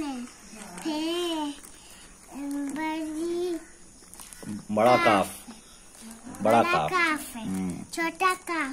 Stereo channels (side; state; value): both; identical; correlation 1.00